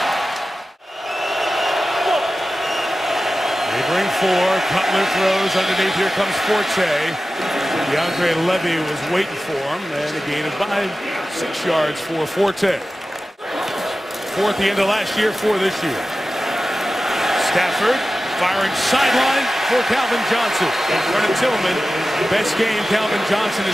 They bring 4. Cutler throws underneath. Here comes Forte. DeAndre Levy was waiting for him. And a gain of 6 yards for Forte. 4th the end of last year, 4 this year. Stafford firing sideline for Calvin Johnson. Vernon Tillman, best game Calvin Johnson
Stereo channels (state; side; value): normal; both; correlation 0.94